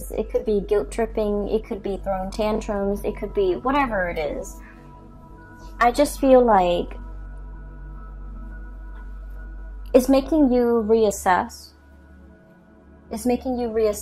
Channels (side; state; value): both; identical; correlation 1.00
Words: it could be guilt tripping, it could be throwing tantrums, it could be whatever it is. I just feel like it's making you reassess. It's making you